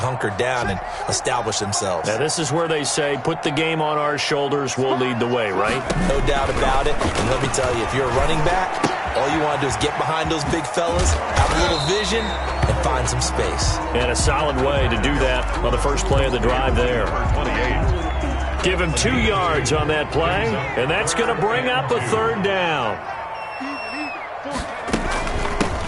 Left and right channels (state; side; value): identical; both; correlation 1.00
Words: down and established themselves. Now, this is where they say, put the game on our shoulders, we'll lead the way, right? No doubt about it, and let me tell you, if you're a running back, all you want to do is get behind those big fellas, have a little vision, and find some space. And a solid way to do that on the first play of the drive there. 28. Give him 2 yards on that play, and that's going to bring up a third down.